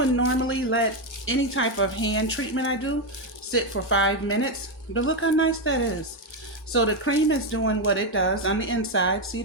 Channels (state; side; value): normal; both; correlation 0.06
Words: normally let any type of hand treatment I do sit for 5 minutes, but look how nice that is. So the cream is doing what it does on the inside. See